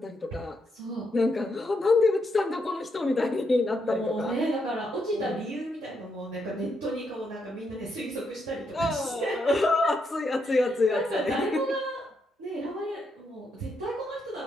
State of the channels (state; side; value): normal; both; correlation 0.79